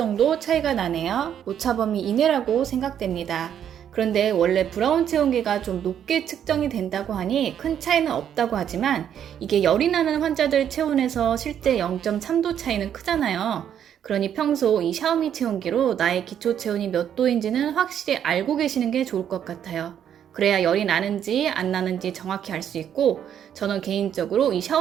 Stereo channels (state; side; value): quieter; left; 9.4 dB